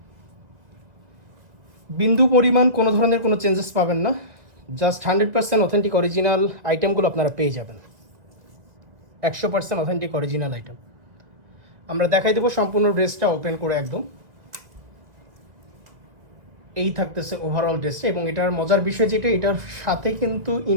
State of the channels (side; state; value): left; late; 2.1 ms